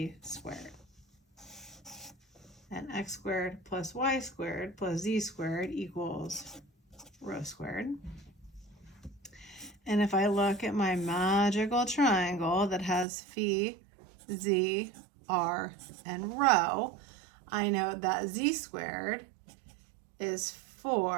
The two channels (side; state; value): left; drops out; at 13.1 s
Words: squared. And x squared plus y squared plus z squared equals rho squared. And if I look at my magical triangle that has phi, z, r, and rho, I know that z squared is